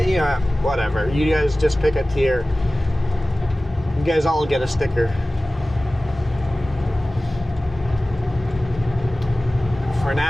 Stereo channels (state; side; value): normal; both; correlation 0.97